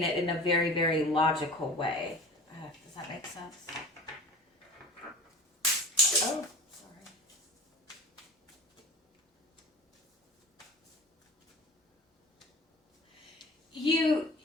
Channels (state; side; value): normal; both; correlation 0.38